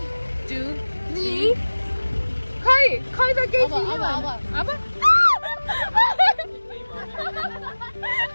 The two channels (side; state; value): both; inverted; correlation -1.00